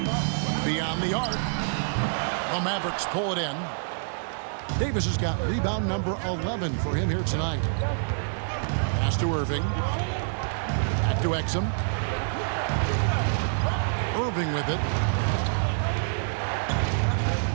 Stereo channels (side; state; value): left; silent; digital silence